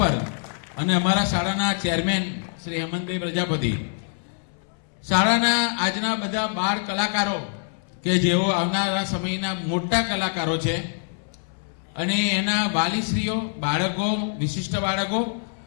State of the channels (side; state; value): right; silent; 62 dB below the other